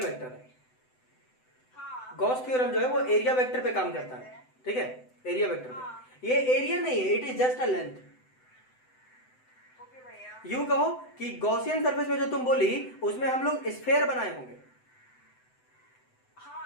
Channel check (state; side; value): late; right; 7.9 ms